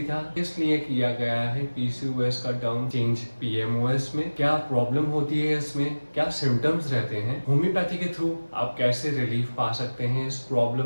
था, किस लिए किया गया है पीसीओएस का टर्म चेंज पीएमओएस में, क्या प्रॉब्लम होती है इसमें, क्या सिम्टम्स रहते हैं, होम्योपैथी के थ्रू आप कैसे रिलीफ पा सकते हैं इस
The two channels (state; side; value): inverted; both; correlation -1.00